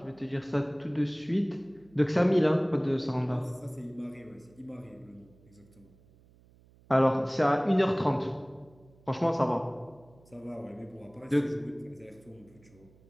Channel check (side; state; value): right; noise; hum, 28 dB below the sound